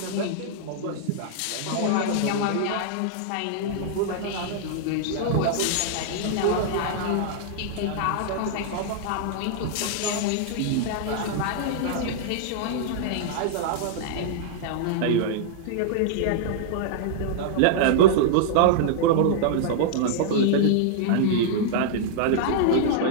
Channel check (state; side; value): different; both; correlation -0.01